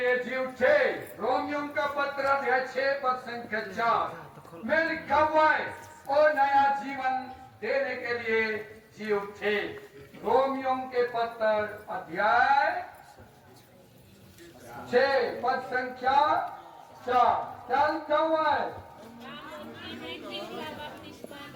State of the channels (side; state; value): both; identical; correlation 1.00